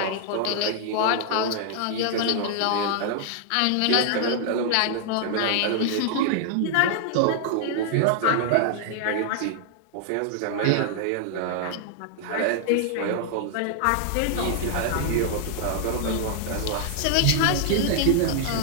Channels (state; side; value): different; both; correlation -0.01